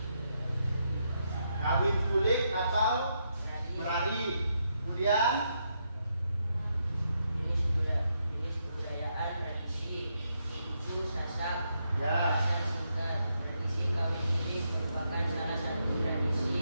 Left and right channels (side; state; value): both; inverted; correlation -0.80